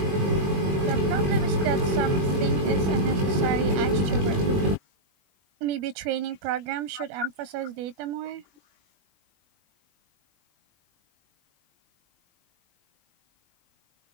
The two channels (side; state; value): left; late; 21 ms